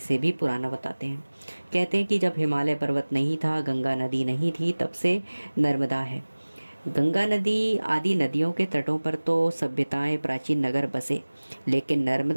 भी पुराना बताते हैं। कहते हैं कि जब हिमालय पर्वत नहीं था, गंगा नदी नहीं थी, तब से नर्मदा है। गंगा नदी आदि नदियों के तटों पर तो सभ्यताएं, प्राचीन नगर बसे, लेकिन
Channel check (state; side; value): inverted; both; correlation -1.00